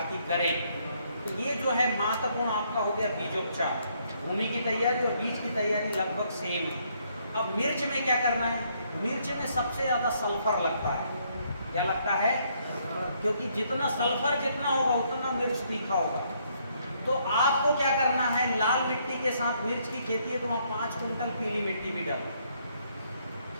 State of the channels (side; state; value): both; inverted; correlation -0.70